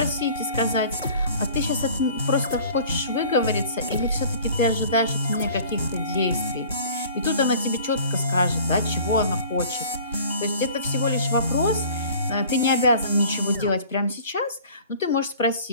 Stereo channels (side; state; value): both; inverted; correlation -0.47